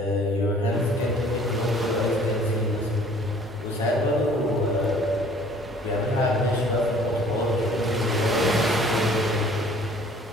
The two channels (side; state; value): both; normal; correlation 0.53